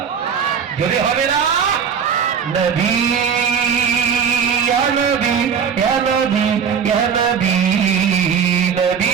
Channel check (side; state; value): left; quieter; 7.0 dB